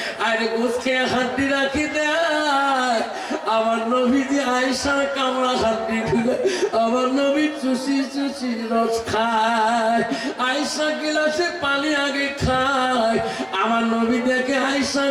আর গোশ খেয়ে হাড্ডি রাখি দেয়। আমার নবীজি আয়েশার কামড়া হাড্ডি খুলে আমার নবী চুষি চুষি রস খায়। আয়েশা গিলাসে পানি আগে খায়, আমার নবী দেখে আয়েশা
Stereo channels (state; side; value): identical; both; correlation 1.00